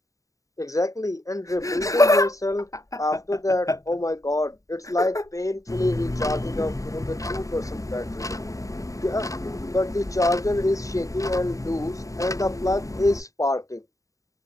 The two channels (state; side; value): late; right; 0.16 ms